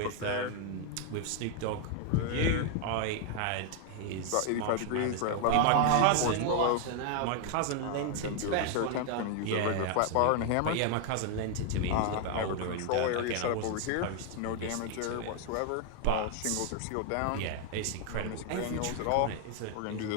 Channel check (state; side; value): different; both; correlation 0.00